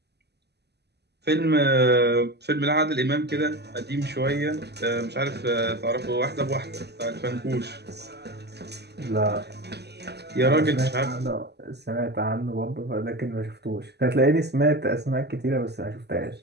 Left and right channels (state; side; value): late; left; 0.49 ms